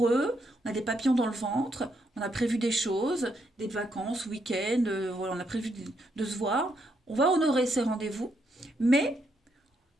on a des papillons dans le ventre, on a prévu des choses, des vacances, week-end, voilà, on a prévu de se voir. On va honorer ces rendez-vous, mais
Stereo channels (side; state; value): both; normal; correlation 0.77